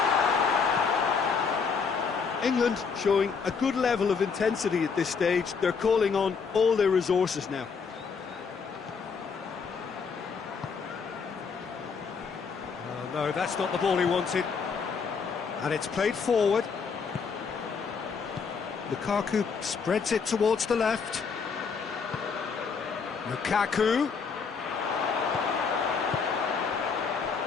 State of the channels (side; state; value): right; quieter; 5.6 dB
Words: England showing a good level of intensity at this stage. They're calling on all their resources now. Oh, no, that's not the ball he wanted. And it's played forward. Lukaku spreads it towards the left. Lukaku.